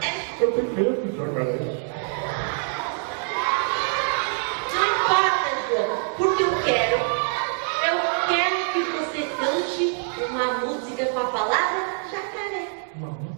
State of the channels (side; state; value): left; silent; 62 dB below the other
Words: Eu tenho medo de jacaré. Não importa, João, porque eu quero que você cante uma música com a palavra jacaré. Uma